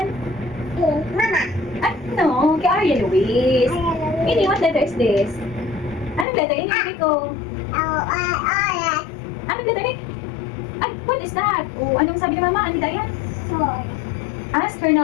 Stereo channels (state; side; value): drops out; right; at 6.2 s